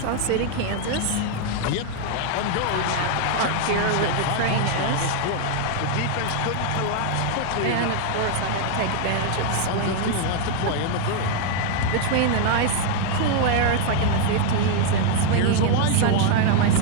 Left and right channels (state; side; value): different; both; correlation 0.00